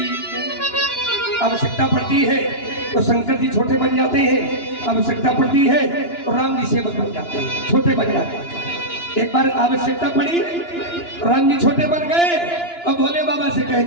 आवश्यकता पड़ती है तो शंकर जी छोटे बन जाते हैं, आवश्यकता पड़ती है तो राम जी सेवक बन जाते हैं, छोटे बन जाते हैं। एक बार आवश्यकता पड़ी, राम जी छोटे बन गए और भोले बाबा से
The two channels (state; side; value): late; right; 2.9 ms